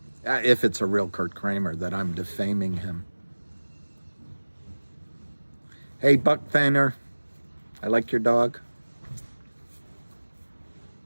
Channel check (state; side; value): inverted; both; correlation -1.00